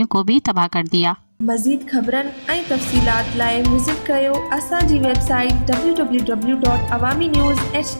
को भी तबाह कर दिया। मज़ीद ख़बरन ऐं तफ़सीलात लाइ विज़िट कयो असांजी वेबसाइट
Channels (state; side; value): inverted; both; correlation -1.00